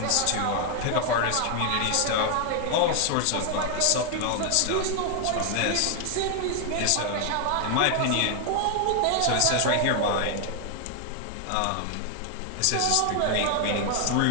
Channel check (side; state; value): both; different; correlation 0.00